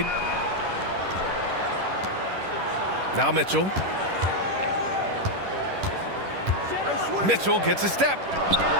Now Mitchell. Mitchell gets a step.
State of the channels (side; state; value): left; late; 10 ms